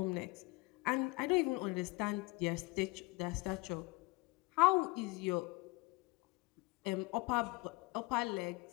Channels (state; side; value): quieter; right; 24.5 dB